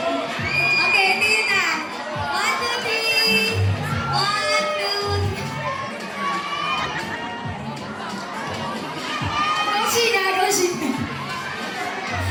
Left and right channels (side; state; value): both; identical; correlation 1.00